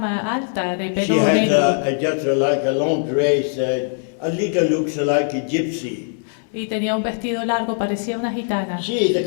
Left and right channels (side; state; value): right; silent; digital silence